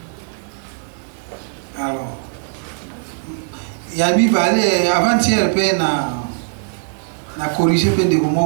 Alors yabi bale avant-hier pe na corriger pe ndeko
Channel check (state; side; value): silent; left; digital silence